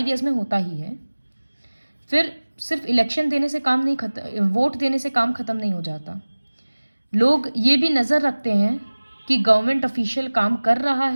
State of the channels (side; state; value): both; inverted; correlation -1.00